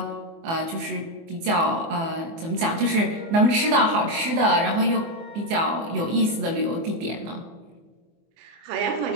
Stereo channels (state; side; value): late; left; 24 ms